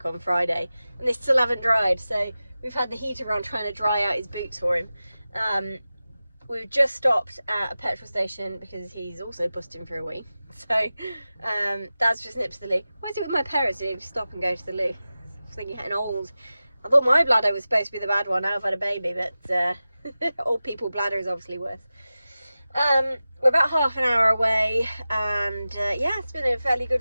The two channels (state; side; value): inverted; both; correlation -0.95